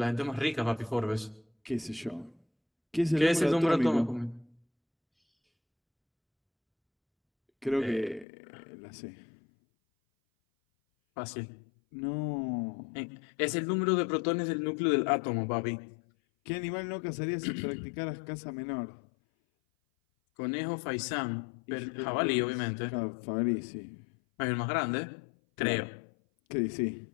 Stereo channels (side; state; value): right; drops out; at 8.2 s